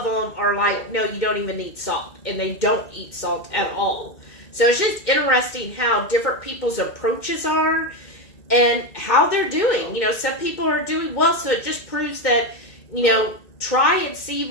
them are like, no, you don't even need salt. And they don't eat salt at all. So it's just interesting how different people's approaches are and how they're doing. You know, some people are doing well, so it just proves that, you know, try and see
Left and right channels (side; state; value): right; late; 2.1 ms